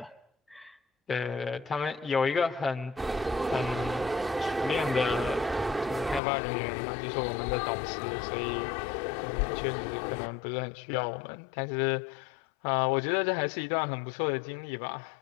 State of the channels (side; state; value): right; drops out; at 6.2 s